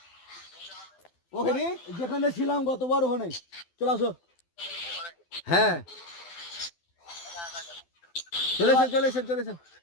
ওখানে যেখানে ছিলাম গতবার ওখানে চলে আসো। হ্যাঁ চলেছেন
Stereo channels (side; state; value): right; late; 12 ms